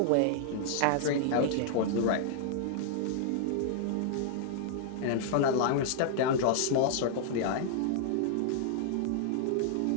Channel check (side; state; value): both; different; correlation -0.01